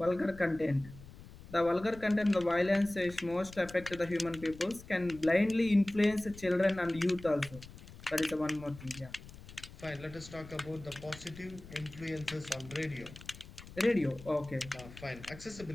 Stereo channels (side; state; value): left; noise; rumble, 17 dB below the sound